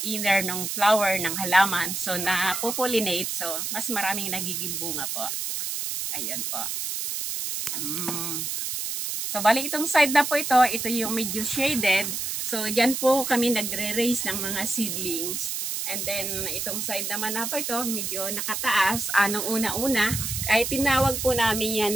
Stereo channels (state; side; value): noise; right; hiss, 3 dB below the sound